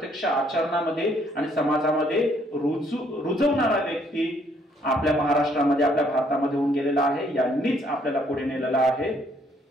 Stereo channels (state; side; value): normal; both; correlation 0.67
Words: आचरणामध्ये आणि समाजामध्ये रुजवणारा व्यक्ती आपल्या महाराष्ट्रामध्ये, आपल्या भारतामध्ये होऊन गेलेला आहे. यांनीच आपल्याला पुढे नेलेला आहे.